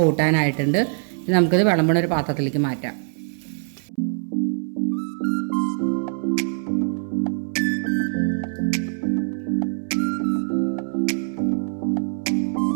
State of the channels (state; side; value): silent; left; 63 dB below the other